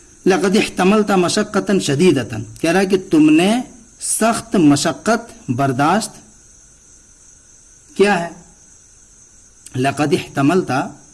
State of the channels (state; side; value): identical; both; correlation 1.00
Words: لقد احتملت مشقۃ شدیدۃ، کہہ رہا ہے کہ تم نے سخت مشقت برداشت کیا ہے۔ لقد احتملت